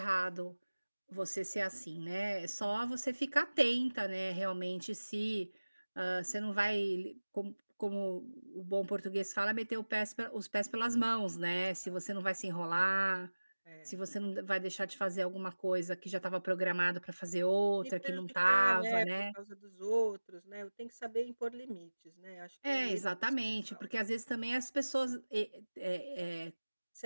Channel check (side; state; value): both; inverted; correlation -1.00